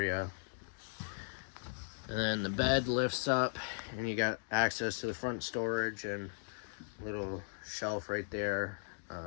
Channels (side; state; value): right; silent; digital silence